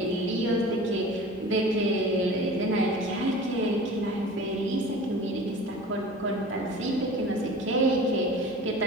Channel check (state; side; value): normal; both; correlation 0.40